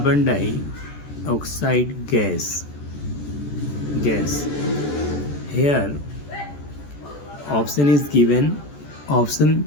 dioxide gas. Here option is given. Option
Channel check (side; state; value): right; late; 14 ms